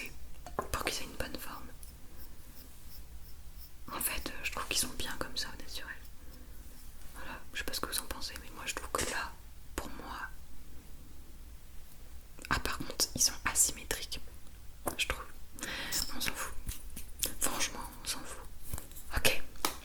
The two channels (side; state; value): both; identical; correlation 1.00